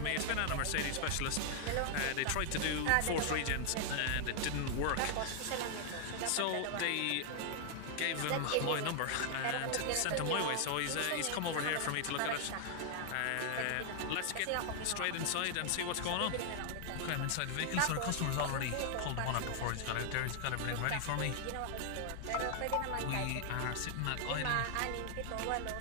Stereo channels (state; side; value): different; both; correlation 0.00